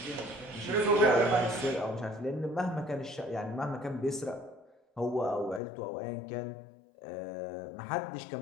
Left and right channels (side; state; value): right; drops out; at 5.6 s